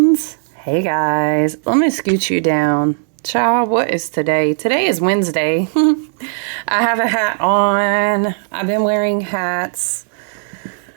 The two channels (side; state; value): left; silent; 68 dB below the other